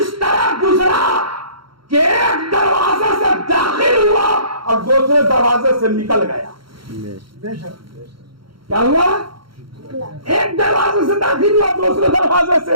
तरह गुजरा कि एक दरवाजे से दाखिल हुआ और दूसरे दरवाजे से निकल गया। क्या हुआ? एक दरवाजे से दाखिल हुआ, दूसरे दरवाजे से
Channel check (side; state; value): left; late; 0.73 ms